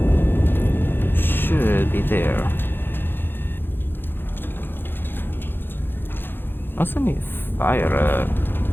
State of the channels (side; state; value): right; late; 0.10 ms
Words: Should be there. Also need to fire a